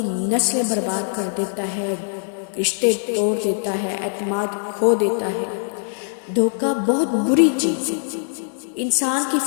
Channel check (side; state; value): right; silent; 61 dB below the other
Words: نسلیں برباد کر دیتا ہے، رشتے توڑ دیتا ہے، اعتماد کھو دیتا ہے۔ دھوکہ بہت بری چیز ہے۔ انسان کی